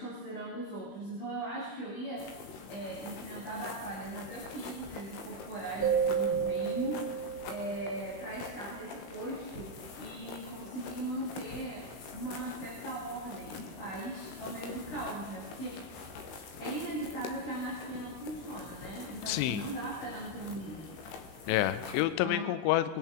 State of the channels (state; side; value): late; right; 20 ms